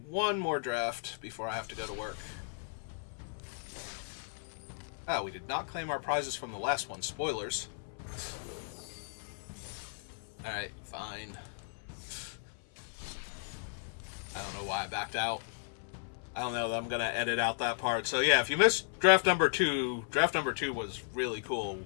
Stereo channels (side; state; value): right; silent; 54 dB below the other